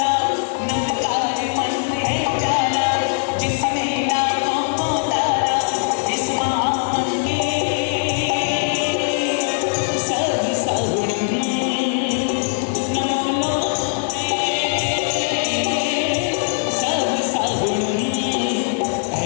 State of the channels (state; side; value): silent; right; digital silence